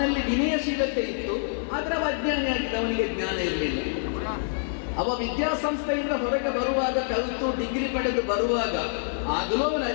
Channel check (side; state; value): right; silent; 60 dB below the other